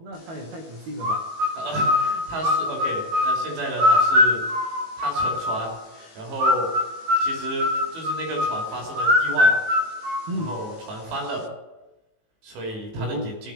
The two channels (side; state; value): left; late; 18 ms